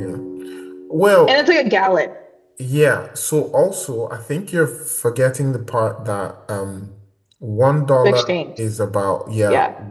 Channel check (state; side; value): identical; both; correlation 1.00